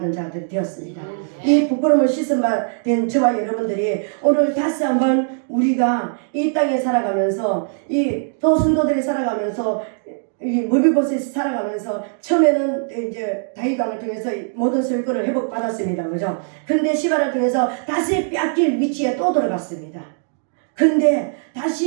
자들이 되었습니다. 이 부끄러움을 씻음받은 저와 여러분들이 오늘 다시 한번 우리가 이 땅에 살아가면서 또 성도들이 살아가면서 이 무비보셋이 살아가면서 처음에는 이제 다윗 왕을 통해서 모든 소유권을 회복받았습니다. 그죠? 근데 시바를 통해서 다시 뺏길 위치에 또 들어갔습니다. 근데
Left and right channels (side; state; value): left; silent; digital silence